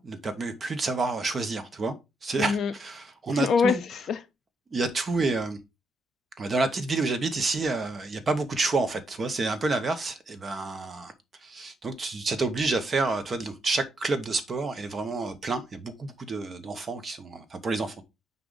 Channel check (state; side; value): normal; both; correlation 0.78